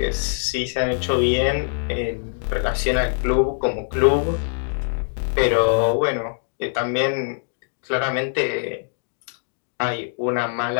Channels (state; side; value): silent; right; digital silence